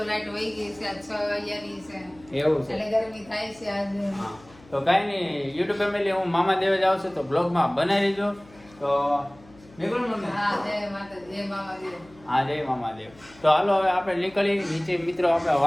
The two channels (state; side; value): noise; left; hum, 25 dB below the sound